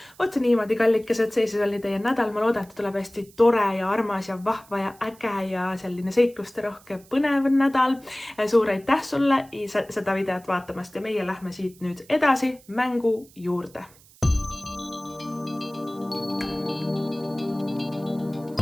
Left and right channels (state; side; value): noise; right; hiss, 26 dB below the sound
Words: Oot niimoodi, kallikesed, see siis oli teie nädal. Ma loodan, et tuleb hästi tore ja armas ja vahva ja äge ja selline seikluste rohke põnev nädal. Suur aitäh sulle seda videot vaatamast ja meie lähme siit nüüd edasi mängu juurde.